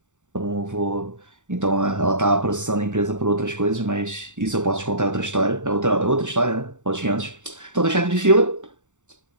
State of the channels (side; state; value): left; late; 0.85 ms